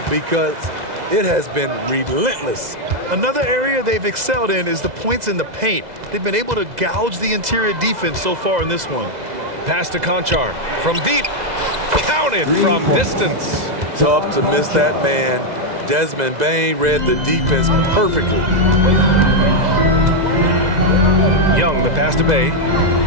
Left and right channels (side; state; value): left; late; 2.0 ms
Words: because it has been relentless. Another area they've excelled in is the points in the paint. They've been able to gouge the interior defense so far in this one. Pass to Conchar from deep. Counted from distance. Tough to miss that man. Desmond Bain read the defense perfectly. Young, the pass to Bay.